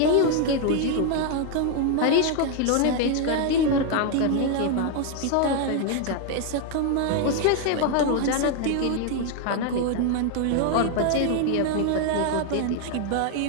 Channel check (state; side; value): different; both; correlation 0.00